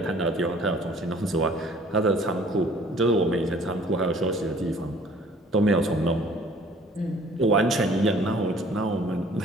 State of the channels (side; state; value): both; normal; correlation 0.54